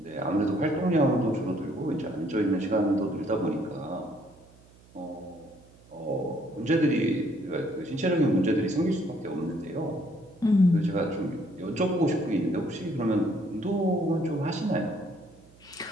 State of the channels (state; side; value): noise; right; hum, 26 dB below the sound